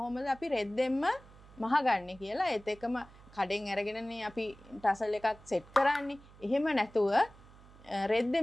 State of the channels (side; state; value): right; noise; hum, 22 dB below the sound